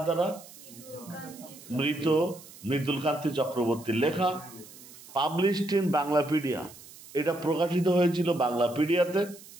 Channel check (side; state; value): right; noise; hiss, 19 dB below the sound